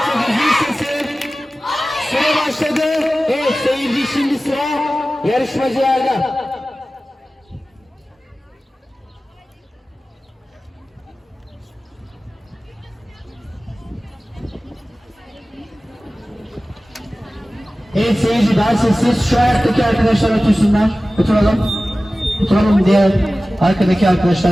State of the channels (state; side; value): normal; both; correlation 0.96